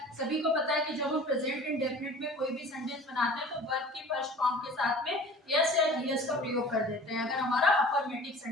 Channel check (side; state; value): both; normal; correlation 0.43